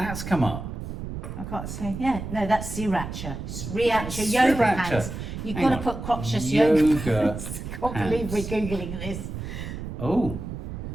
come up. I can't say. Yeah, no, that's sriracha. Sriracha yoga Sriracha. pants. You've Hang got to on. put crotchless yoga Yoga pants. I can't believe we're pants. Googling this. Oh.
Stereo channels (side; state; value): right; noise; rumble, 7 dB below the sound